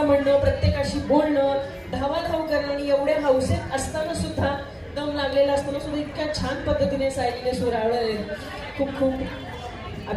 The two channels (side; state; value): both; identical; correlation 1.00